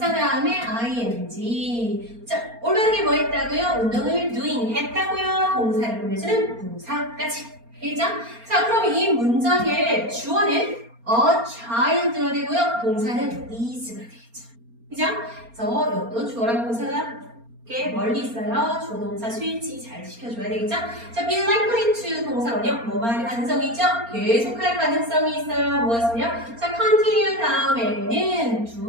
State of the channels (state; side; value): late; left; 4.3 ms